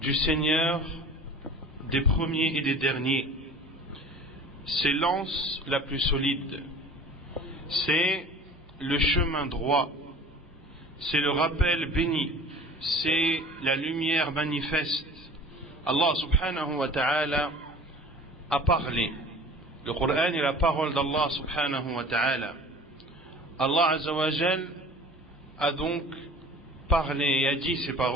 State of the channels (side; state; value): both; normal; correlation 0.43